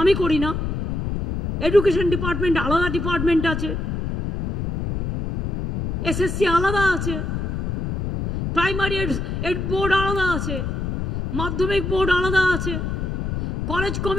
আমি করি না। এডুকেশন ডিপার্টমেন্ট আলাদা ডিপার্টমেন্ট আছে, এসএসসি আলাদা আছে, প্রাইমারি এড বোর্ড আলাদা আছে, মাধ্যমিক বোর্ড আলাদা আছে, কলেজ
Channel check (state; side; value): noise; left; rumble, 2 dB below the sound